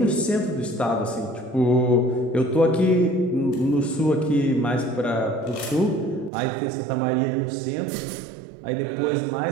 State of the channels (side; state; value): left; drops out; at 6.3 s